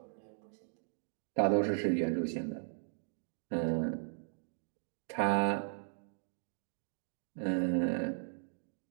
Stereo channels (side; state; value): left; silent; 53 dB below the other